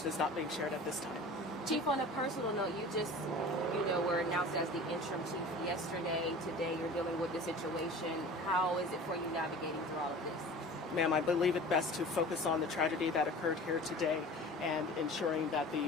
is not being shared at this time. Chief, on a personal note, you just, were announced as the interim chief yesterday. Today, you're dealing with the situation. How is it for you navigating through all of this? Ma'am, I believe it best to focus on the tragedy that occurred here today and ensuring that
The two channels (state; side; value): normal; both; correlation 0.39